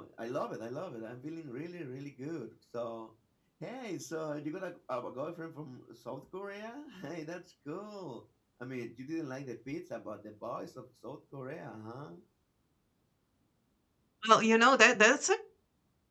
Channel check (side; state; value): both; identical; correlation 1.00